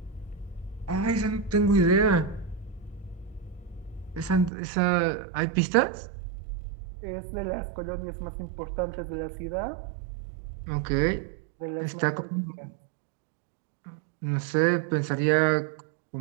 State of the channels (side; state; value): left; drops out; at 4.5 s